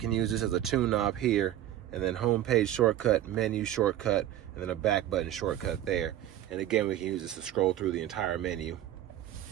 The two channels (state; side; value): quieter; left; 12.5 dB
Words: use this as a tune knob here. And then home page shortcut, menu shortcut, and then a back button shortcut there. And again, we can use this to scroll through the entire menu.